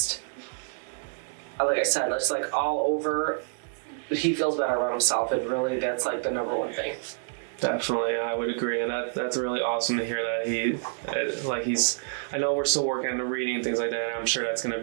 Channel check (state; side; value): silent; left; digital silence